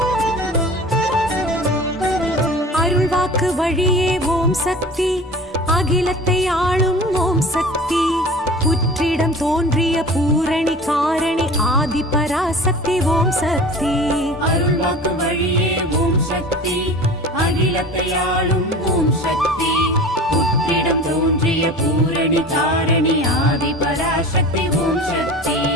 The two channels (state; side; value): normal; both; correlation 0.39